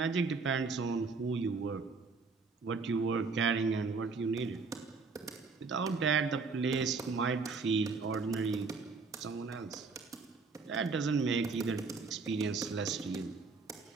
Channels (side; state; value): left; quieter; 4.5 dB